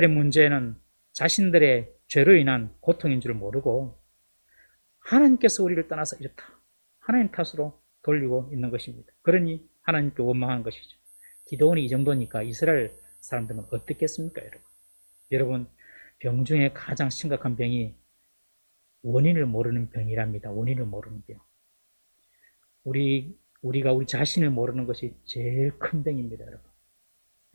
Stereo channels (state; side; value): inverted; both; correlation -1.00